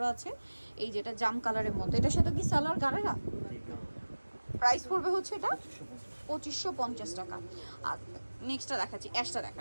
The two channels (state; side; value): inverted; both; correlation -1.00